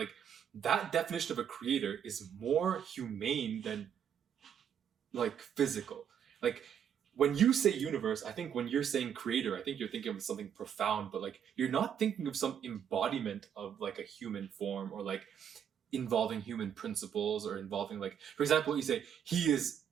that definition of a creator is more humane than like physical. Like, when you say universe, I think when you're saying creator, I think you're thinking of something profound, but like you're not thinking of some embodiment of like a human form, or like involving human principles, or involving, like, for example, you say he is,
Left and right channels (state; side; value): quieter; left; 8.7 dB